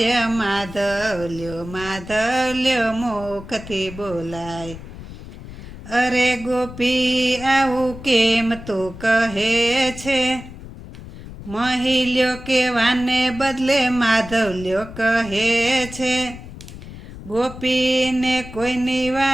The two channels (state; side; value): noise; left; rumble, 14 dB below the sound